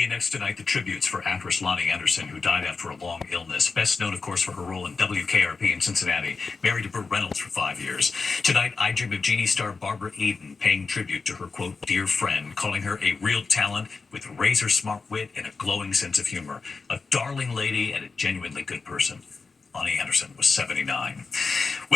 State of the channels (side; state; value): right; quieter; 4.5 dB